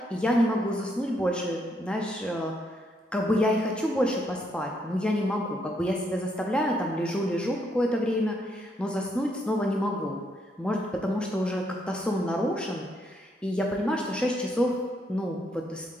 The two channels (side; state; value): both; normal; correlation 0.75